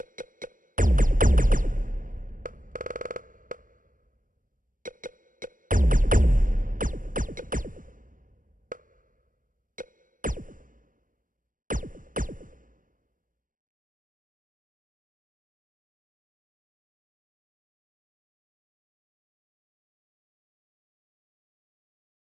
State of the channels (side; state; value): left; late; 0.39 ms